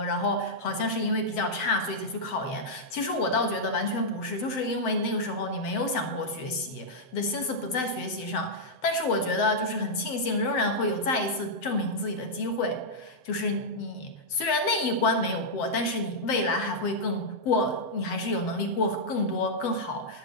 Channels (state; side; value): late; right; 7.8 ms